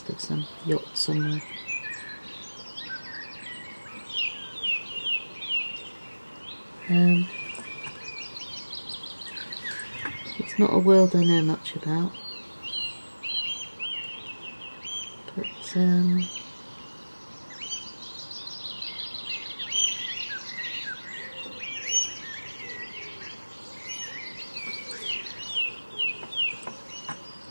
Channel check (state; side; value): inverted; both; correlation -1.00